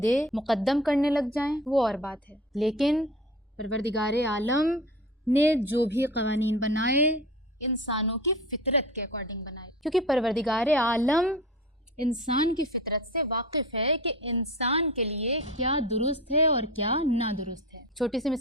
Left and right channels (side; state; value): both; normal; correlation 0.34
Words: مقدم کرنے لگ جائیں، وہ اور بات ہے۔ لیکن پروردگار عالم نے جو بھی قوانین بنائے انسانوں کی فطرت کے اکارڈنگ بنائے، کیونکہ پروردگار عالم انسان کی فطرت سے واقف ہے کہ انسان کے لیے کیا درست ہے اور کیا نادرست ہے۔ چھوٹی سی